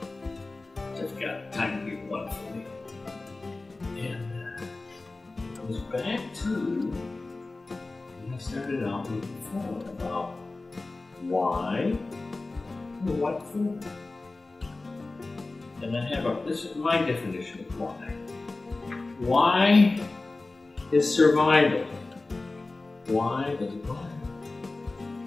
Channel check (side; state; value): right; quieter; 3.3 dB